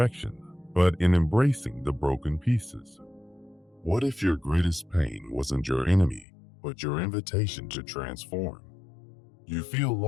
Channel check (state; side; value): drops out; right; at 6.2 s